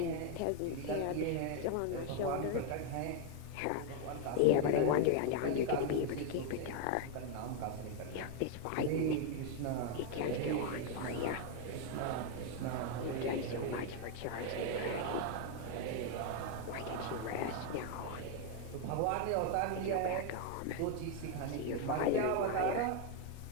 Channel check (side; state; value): both; different; correlation 0.00